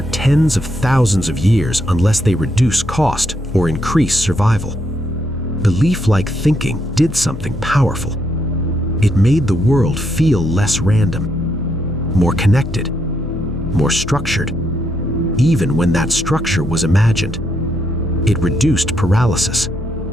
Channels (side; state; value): both; normal; correlation 0.77